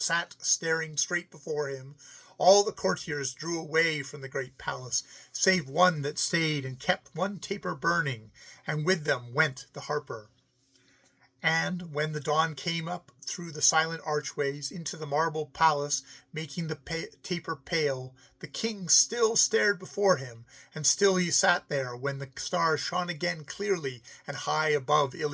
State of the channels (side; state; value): both; identical; correlation 1.00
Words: straight before him, all the courtiers drew away from the great palace, save one that stayed and kept one taper burning, and with them went the harper. And when the dawn came up through the silent archways into the marble palace, making the taper pale, the king still stared before him, and still he sat there when the stars shone again clearly and high above